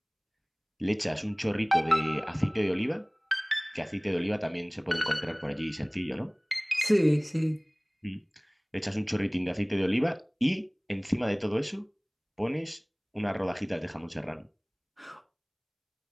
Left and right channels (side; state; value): both; identical; correlation 1.00